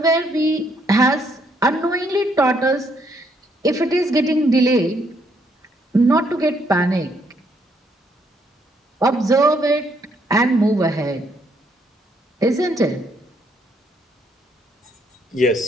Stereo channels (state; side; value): normal; both; correlation 0.71